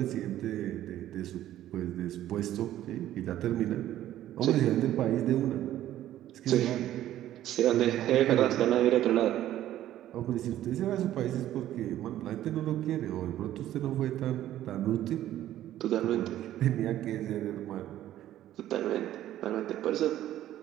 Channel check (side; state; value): left; quieter; 12.9 dB